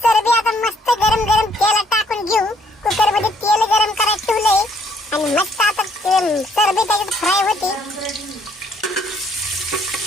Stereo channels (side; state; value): both; normal; correlation 0.66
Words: चरबी आता मस्त गरम गरम तेलात टाकून घेऊ. कुकर मध्ये तेल गरम करायला ठेवलंय आणि मस्त आता चरबी त्याच्यात फ्राय होते.